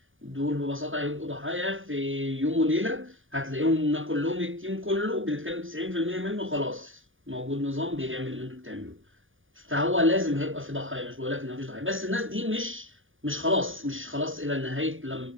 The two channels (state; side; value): late; left; 0.58 ms